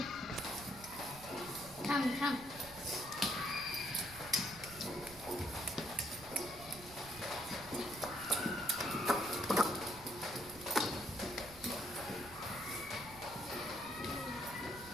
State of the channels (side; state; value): right; noise; rumble, 17 dB below the sound